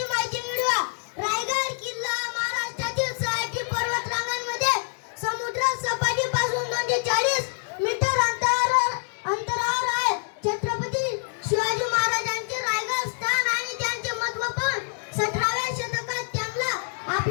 माहिती मिळवूया. रायगड किल्ला महाराष्ट्रातील 6 पर्वतरांगांमध्ये समुद्र सपाटीपासून 240 मीटर अंतरावर आहे. छत्रपती शिवाजी महाराजांचे रायगड स्थान आणि त्यांचे महत्त्व पण 17व्या शतकात त्यांना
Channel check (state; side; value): silent; right; 60 dB below the other